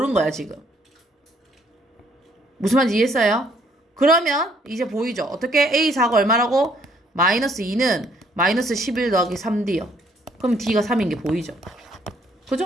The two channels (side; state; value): both; normal; correlation 0.65